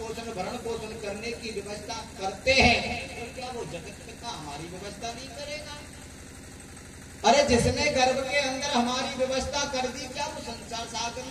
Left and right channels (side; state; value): both; identical; correlation 1.00